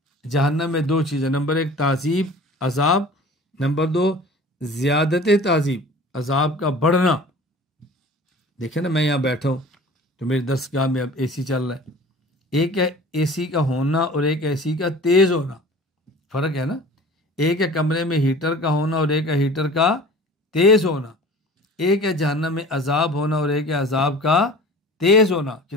جہنم میں دو چیزیں، نمبر ایک تعذیب عذاب، نمبر دو زیادت تعذیب عذاب کا بڑھنا۔ دیکھیں نا، میں یہاں بیٹھا ہوں تو میری درسگاہ میں اب اے سی چل رہا ہے، ایک ہے اے سی کا ہونا اور ایک اے سی کا تیز ہونا، فرق ہے نا۔ ایک ہے کمرے میں ہیٹر کا ہونا اور ایک ہے ہیٹر کا تیز ہونا، ایک ہے جہنم میں عذاب ہونا اور ایک ہے عذاب کا تیز ہونا،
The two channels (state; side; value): normal; both; correlation 0.43